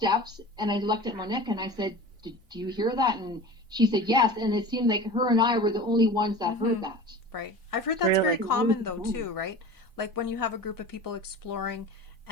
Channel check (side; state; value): both; normal; correlation 0.35